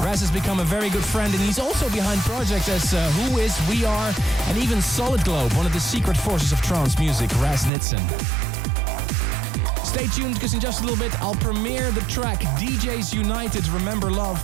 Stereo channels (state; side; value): drops out; left; at 7.7 s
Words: has become a very good friend, and he's also behind projects as Who Is, We Are, and even Solid Globe, one of the secret forces of trance music, Raz Nitzen. Stay tuned, because in just a little bit I'll premiere the track DJs United, Remember Love.